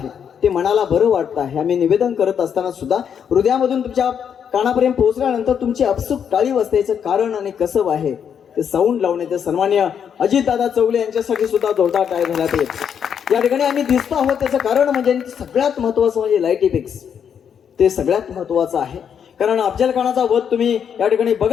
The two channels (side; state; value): right; quieter; 7.9 dB